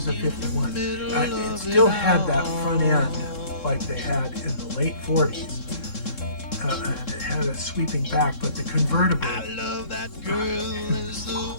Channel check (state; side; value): late; right; 3.7 ms